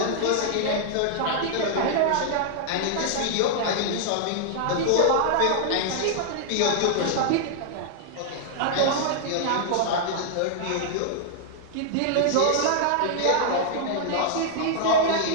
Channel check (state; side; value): different; both; correlation -0.01